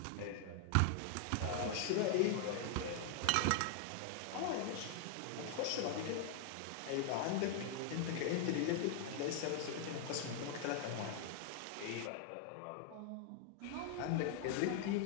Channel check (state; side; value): different; both; correlation 0.00